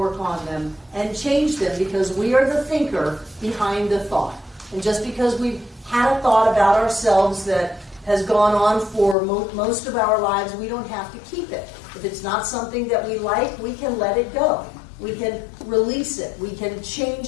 on them, and change them, because we are the thinker behind the thought. And just because we've had a thought about ourselves that has gone on for most of our lives, we don't have to keep it. If it's not something that we like, we can let it go. We can release it. We can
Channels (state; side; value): drops out; right; at 9.2 s